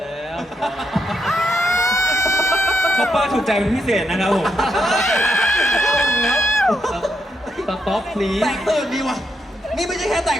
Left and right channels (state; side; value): normal; both; correlation 0.81